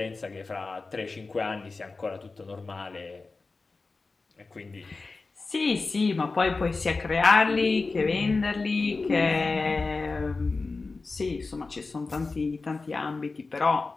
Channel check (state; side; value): quieter; right; 3.9 dB